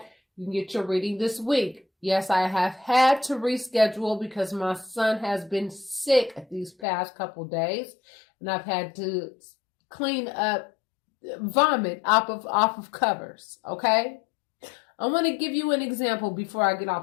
You can get your reading this week. Yes, I have had to reschedule because my son has been sick these past couple days, and I've had to clean up vomit off of covers. Okay, I want to give you an example before I get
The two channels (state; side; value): drops out; right; at 6.9 s